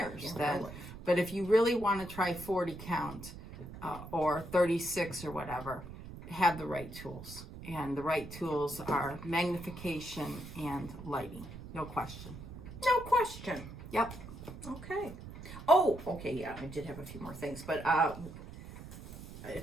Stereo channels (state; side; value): noise; right; rumble, 13 dB below the sound